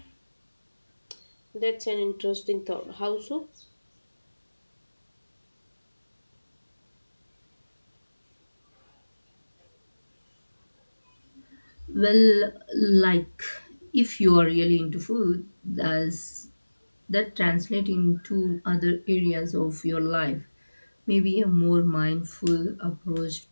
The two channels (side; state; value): both; inverted; correlation -1.00